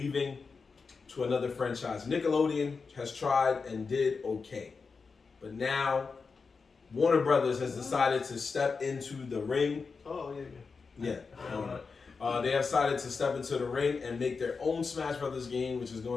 to another franchise. Nickelodeon has tried and did okay, but now Warner Brothers has decided to step into the ring. Oh, Yeah. They have decided to step into the ring and make their own Smash Brothers game, which is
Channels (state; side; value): quieter; right; 4.8 dB